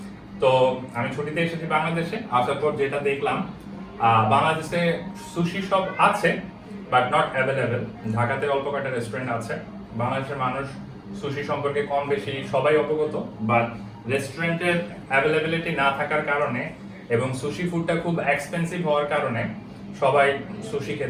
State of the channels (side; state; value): both; identical; correlation 1.00